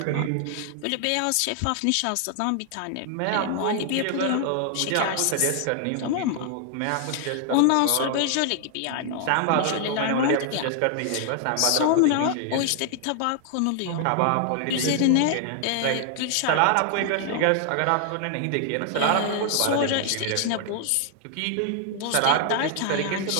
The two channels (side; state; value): both; different; correlation 0.00